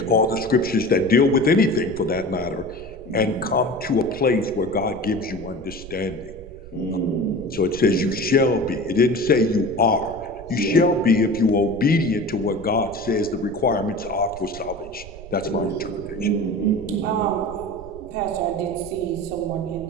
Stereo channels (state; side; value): noise; right; rumble, 16 dB below the sound